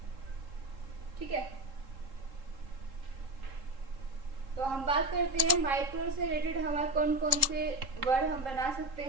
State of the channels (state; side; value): late; left; 3.7 ms